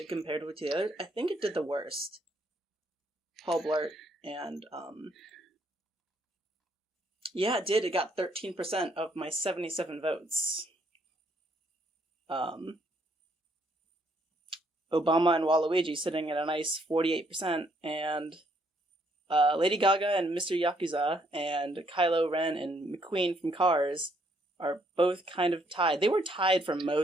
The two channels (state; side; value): normal; both; correlation 0.70